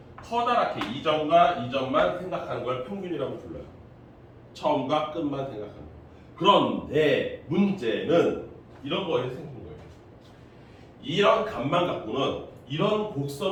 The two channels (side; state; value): both; identical; correlation 1.00